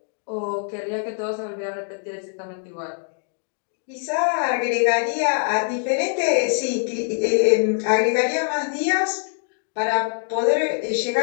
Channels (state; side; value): silent; right; digital silence